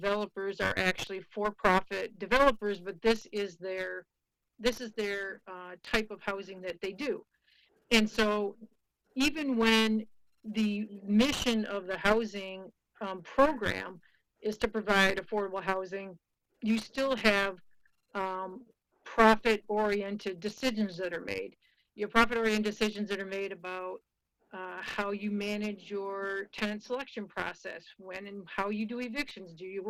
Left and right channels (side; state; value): both; identical; correlation 1.00